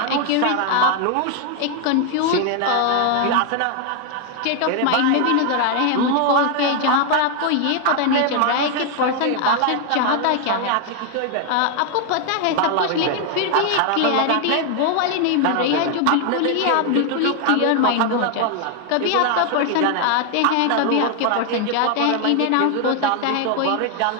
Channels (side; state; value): both; different; correlation 0.01